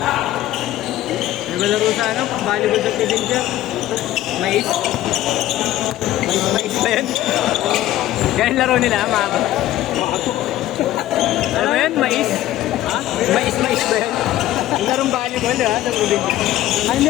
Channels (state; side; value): quieter; right; 14.4 dB